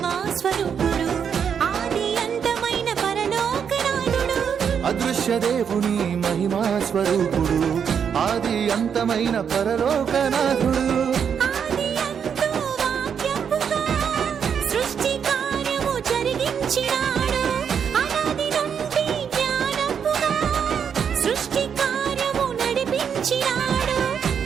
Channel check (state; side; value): quieter; left; 7.4 dB